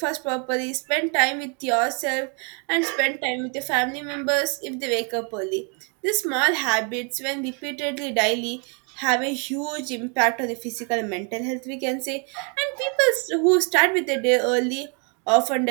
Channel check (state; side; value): quieter; left; 36.6 dB